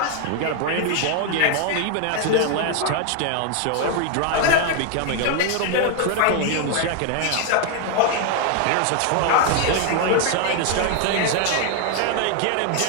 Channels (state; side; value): different; both; correlation 0.00